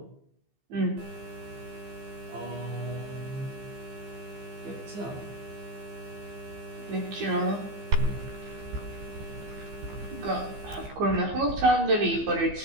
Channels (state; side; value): late; left; 15 ms